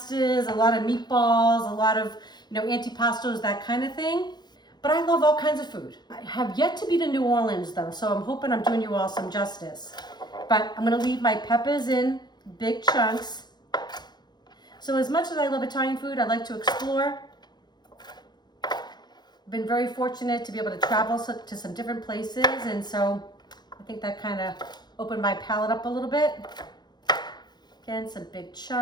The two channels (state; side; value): late; right; 0.21 ms